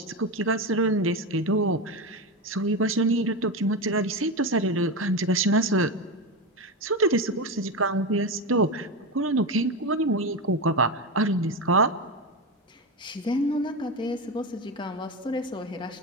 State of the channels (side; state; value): both; normal; correlation 0.17